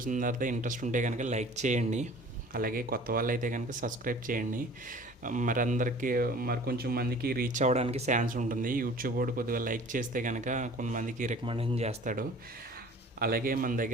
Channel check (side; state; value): both; normal; correlation 0.47